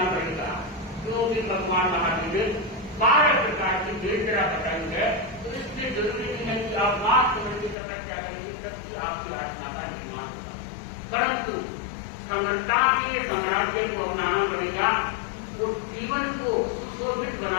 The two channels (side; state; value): right; drops out; at 7.8 s